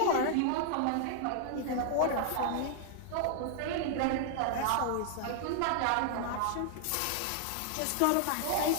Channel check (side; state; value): both; different; correlation -0.01